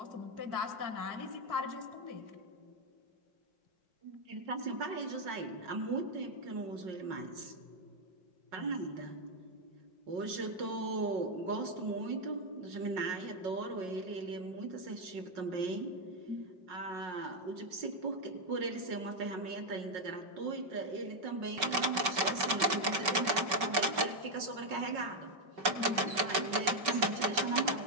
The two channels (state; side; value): late; left; 5.2 ms